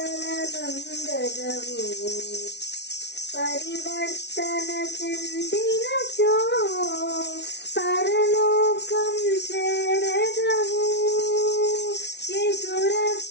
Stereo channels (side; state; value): right; late; 0.50 ms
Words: నందగవు, పరివర్తన చెందినచో పరలోకం చేరగవు. యేసు